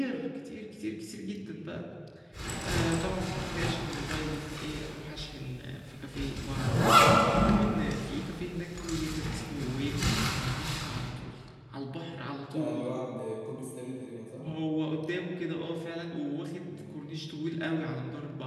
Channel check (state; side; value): identical; both; correlation 1.00